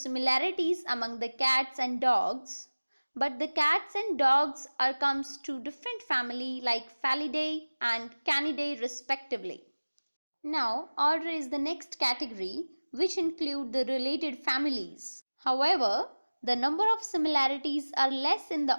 among the cats and dogs, but the cats and dogs comes to different family like Felidae and Canidae respectively. Now, order is the next category which include the related families. However, the number of similarities are less in the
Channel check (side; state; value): both; inverted; correlation -1.00